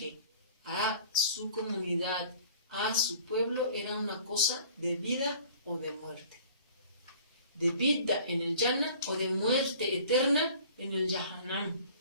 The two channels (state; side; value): inverted; both; correlation -0.48